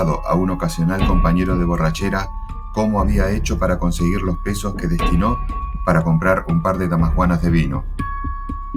a un ocasional compañero de borrachera cómo había hecho para conseguir los pesos que destinó para comprar un par de damajuanas de vino.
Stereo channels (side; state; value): both; identical; correlation 1.00